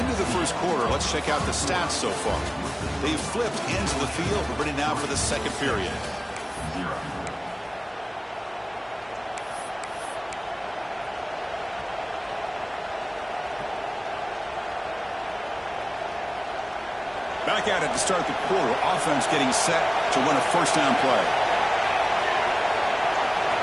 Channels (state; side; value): identical; both; correlation 1.00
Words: of the first quarter, let's check out the stats so far. They've flipped ends of the field. We're ready now for the second period. Back at it to start the quarter. Offense getting set to run a 1st down play.